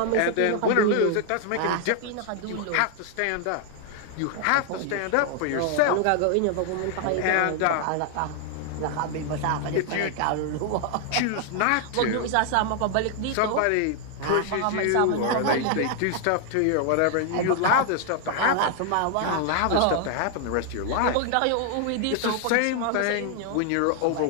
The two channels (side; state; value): both; different; correlation 0.00